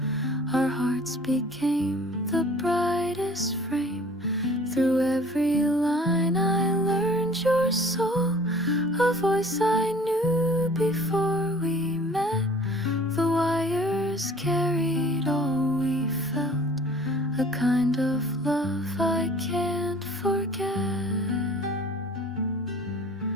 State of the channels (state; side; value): normal; both; correlation 0.50